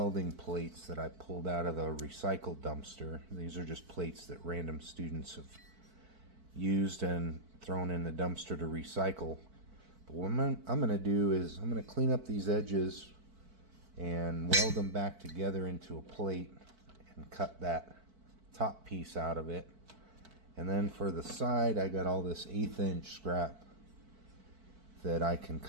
plates that I pulled out of the recycle dumpster. These are just plates that random students have used and thrown in the dumpster to recycle. But what I'm going to do is I'm going to clean up these edges and weld them back together into a plate and cut that top piece out of it. And then for the side, I got all this 1/8 inch scrap that I can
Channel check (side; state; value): left; late; 4.5 ms